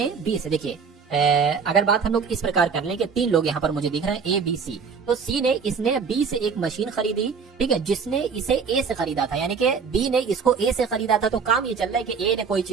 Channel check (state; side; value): quieter; left; 5.8 dB